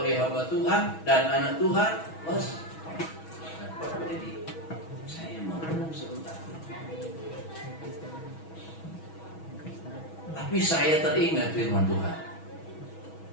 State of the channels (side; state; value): right; late; 6.2 ms